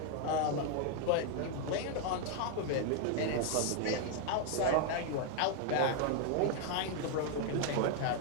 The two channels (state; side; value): different; both; correlation 0.01